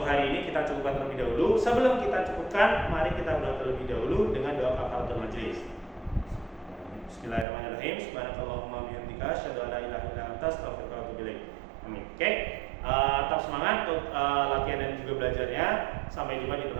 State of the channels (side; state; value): left; drops out; at 7.5 s